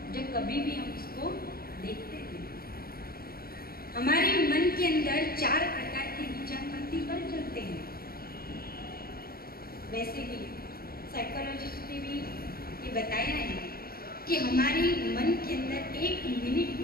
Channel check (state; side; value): late; right; 0.44 ms